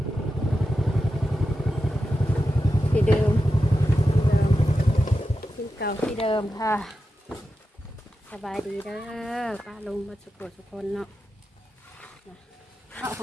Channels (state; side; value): normal; both; correlation 0.90